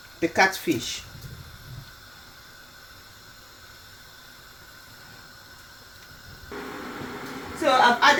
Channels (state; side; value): noise; right; rumble, 28 dB below the sound